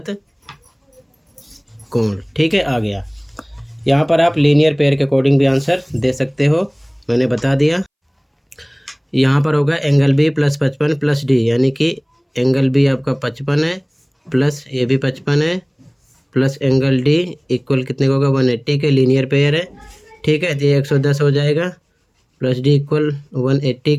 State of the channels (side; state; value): both; identical; correlation 1.00